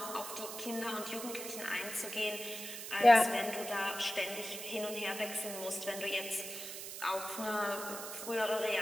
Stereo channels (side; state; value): right; noise; hiss, 8 dB below the sound